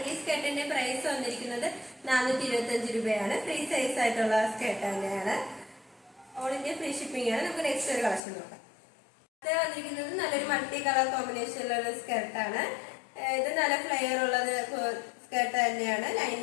ഈ സ്കേർട്ടിന്റെ പ്രൈസ് വന്നിരിക്കുന്നത് 425 രൂപയാണ്. ഫ്രീ സൈസ് ആയിട്ടുള്ള സ്കേർട്ട് തന്നെയാണ്. ഓൾ ഇന്ത്യ ഫ്രീ ഷിപ്പിംഗ് ആണ്. നമുക്ക് നെക്സ്റ്റ് ഒരു കളക്ഷൻ നോക്കാം. ഇത് വന്നിരിക്കുന്നത് നല്ലൊരു മൾട്ടി കളർ കോമ്പിനേഷനിലുള്ള സ്കേർട്ടാണ്. ഇത് നല്ല ഫ്ലെയർ ഉള്ളത് സ്കേർട്ട് തന്നെയാണ്.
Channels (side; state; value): right; drops out; at 8.2 s